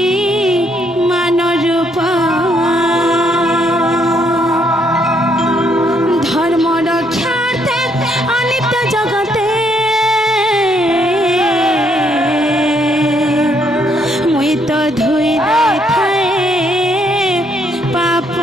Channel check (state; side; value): normal; both; correlation 0.71